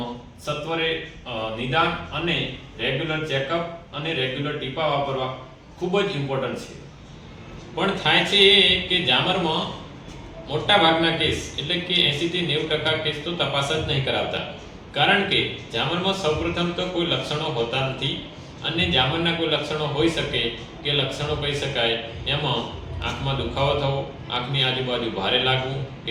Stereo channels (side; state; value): both; identical; correlation 1.00